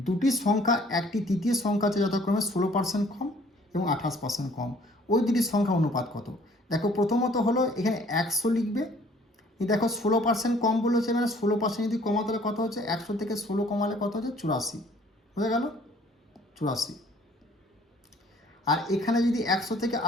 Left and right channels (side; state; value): both; normal; correlation 0.57